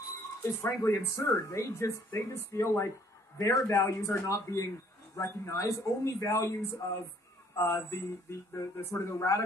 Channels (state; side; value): normal; both; correlation 0.61